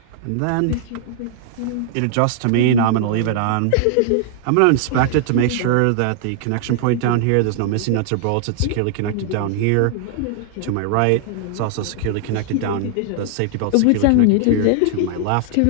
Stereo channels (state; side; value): different; both; correlation -0.01